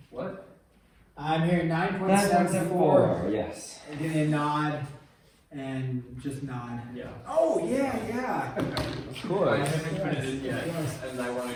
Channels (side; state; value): both; identical; correlation 1.00